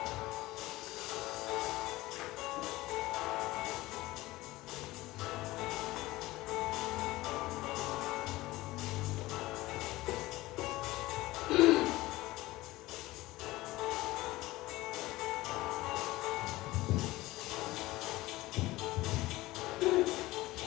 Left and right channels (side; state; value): right; quieter; 18.6 dB